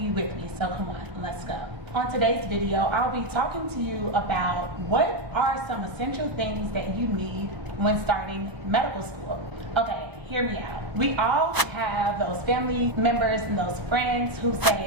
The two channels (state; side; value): late; left; 1.0 ms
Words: with me, so come on, let's go. On today's video, I'll be talking to you about what are some essential things that you need when starting medical school. Okay, hear me out. We all have those family members and those friends who